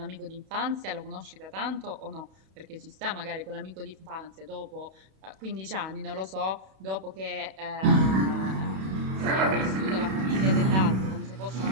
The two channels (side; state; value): left; late; 31 ms